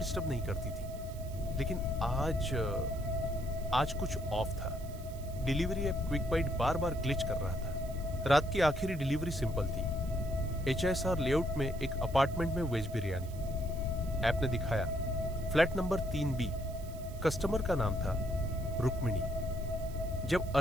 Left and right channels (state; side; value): noise; right; hiss, 20 dB below the sound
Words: नहीं करती थी, लेकिन आज कुछ ऑफ था। डिलीवरी ऐप क्विक बाइट बार बार ग्लिच कर रहा था। रात की आखिरी डिलीवरी सिंपल थी, HSR लेआउट में एक अपार्टमेंट में वेज बिरयानी। ऐप ने दिखाया फ्लैट नंबर 3B। कस्टमर का नाम था रुक्मिणी। जब